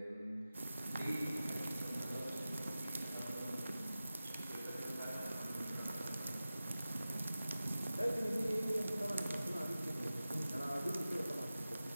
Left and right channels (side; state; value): both; inverted; correlation -0.95